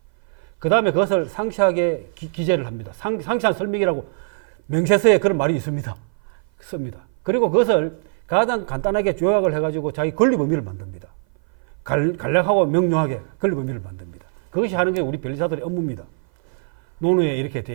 그 다음에 그것을 상세하게 기재를 합니다. 상세한 설명이라고 명세서에 그런 말이 있습니다. 씁니다. 그리고 그것을 가장 간단하게 요약을 해가지고 자기 권리 범위를 만듭니다. 간략하고 명료하게 권리 범위를 만듭니다. 그것이 하는 게 우리 변리사들의 업무입니다. 논어에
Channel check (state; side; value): silent; left; 57 dB below the other